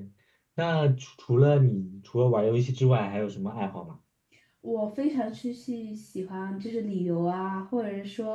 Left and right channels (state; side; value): identical; both; correlation 1.00